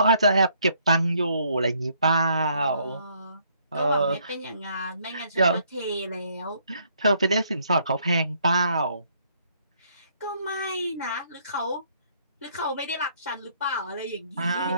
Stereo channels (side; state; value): both; inverted; correlation -0.67